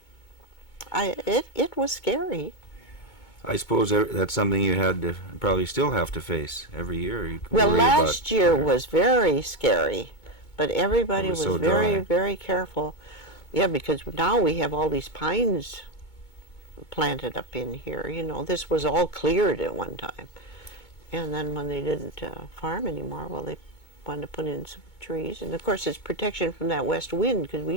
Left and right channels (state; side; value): late; right; 2.2 ms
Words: it was scary. I suppose that's something you had to probably still have to face every year. You Well, worry last about year fire. was very scary, but everybody It was was so very, dry. very careful. Yeah, because now we have all these pines planted up in here. You know, this was all cleared at one time. And then when they didn't farm anymore, well, they wanted to put in some trees. And of course, it's protection from that west wind, because we